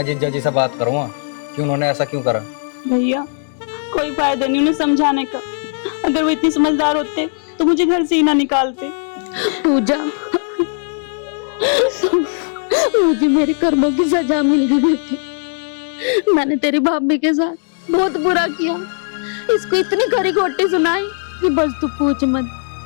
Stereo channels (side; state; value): right; silent; digital silence